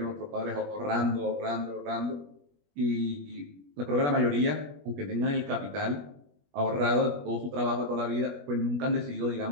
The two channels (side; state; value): left; late; 21 ms